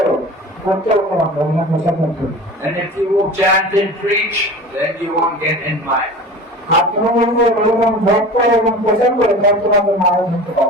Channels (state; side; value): normal; both; correlation 0.36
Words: করতে হতো না হরিনাম প্রচার করতে। And if you will chant and preach, then you won't get in Maya. আর তুমি যদি হরিনাম জপ করো এবং প্রচার করো, তাহলে তোমাকে মায়া ধরতে